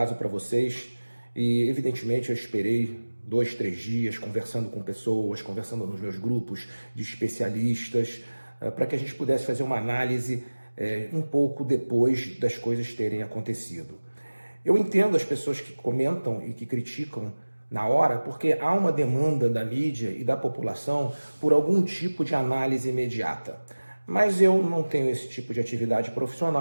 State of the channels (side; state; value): both; inverted; correlation -1.00